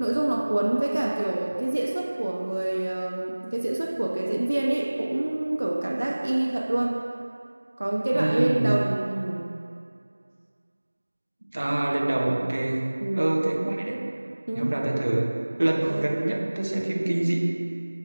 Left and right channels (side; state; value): both; inverted; correlation -1.00